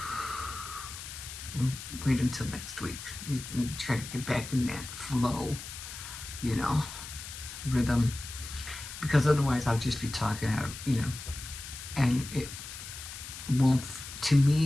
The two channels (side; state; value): left; noise; hiss, 11 dB below the sound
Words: wait until next week. You try to get back in that flow, you know, rhythm, because otherwise I'll just be talking out, and it won't. To